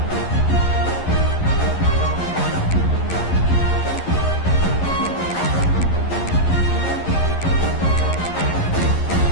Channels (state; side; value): late; right; 11 ms